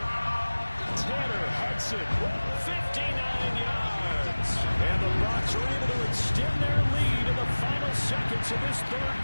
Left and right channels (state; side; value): inverted; both; correlation -1.00